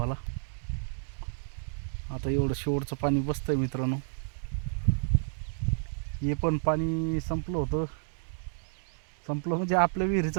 आता एवढं शेवटचं पाणी बसतंय मित्रांनो. हे पण पाणी संपलं म्हणजे आपल्या विहिरीचं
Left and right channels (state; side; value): silent; left; digital silence